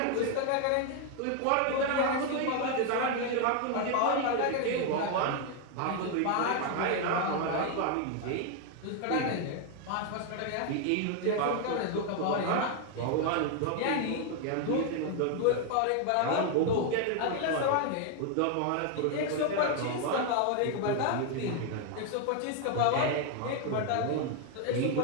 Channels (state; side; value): different; both; correlation 0.01